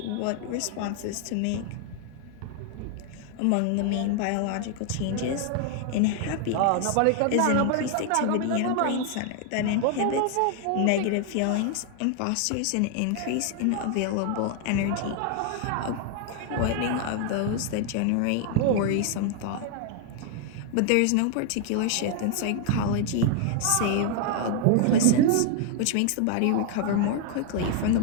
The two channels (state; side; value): different; both; correlation 0.00